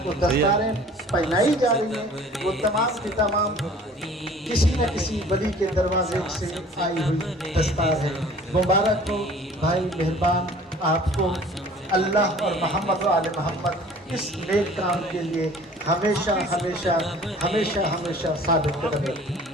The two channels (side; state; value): both; normal; correlation 0.49